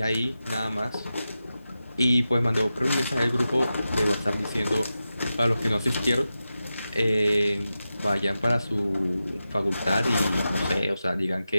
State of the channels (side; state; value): both; inverted; correlation -0.92